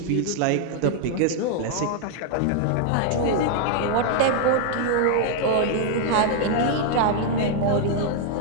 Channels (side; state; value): both; different; correlation 0.00